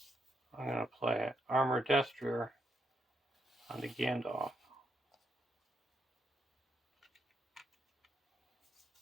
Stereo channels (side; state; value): both; normal; correlation 0.79